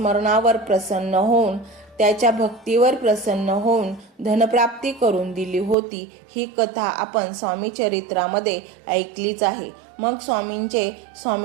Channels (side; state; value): left; drops out; at 5.8 s